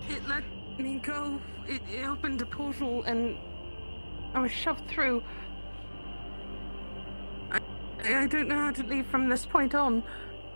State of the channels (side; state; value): both; inverted; correlation -1.00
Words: it let me go. It opened a portal and I was shoved through. I don't know how to leave from this point on.